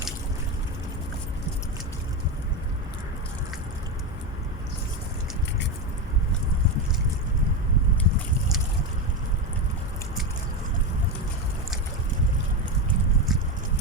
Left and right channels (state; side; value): normal; both; correlation 0.14